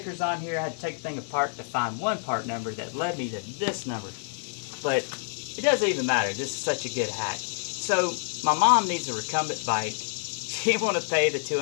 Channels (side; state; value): right; silent; digital silence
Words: on here. I had to take the thing apart to find one part number that led me to this number. But it doesn't even matter. This is such a good hack. So my mom needs a recumbent bike. She didn't want to pay the